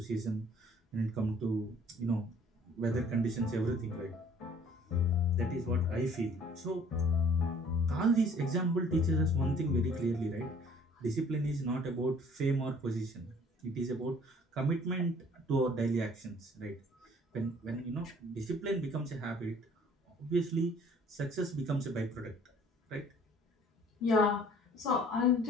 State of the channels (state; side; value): normal; both; correlation 0.55